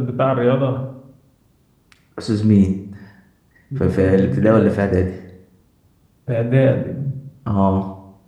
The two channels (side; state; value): both; identical; correlation 1.00